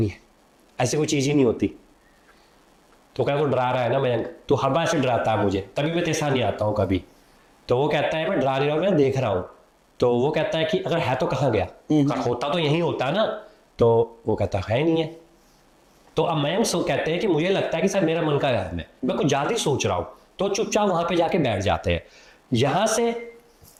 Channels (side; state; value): both; identical; correlation 1.00